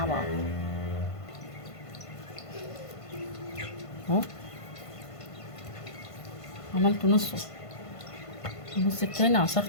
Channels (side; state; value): right; late; 1.5 ms